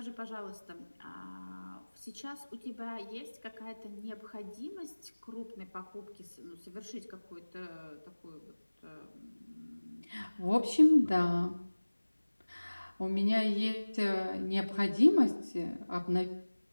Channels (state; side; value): inverted; both; correlation -1.00